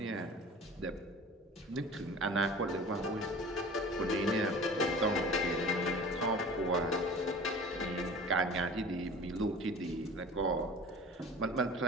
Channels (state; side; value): normal; both; correlation 0.40